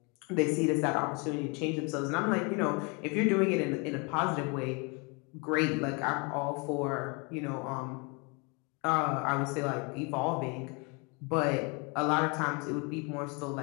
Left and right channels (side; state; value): right; quieter; 31.3 dB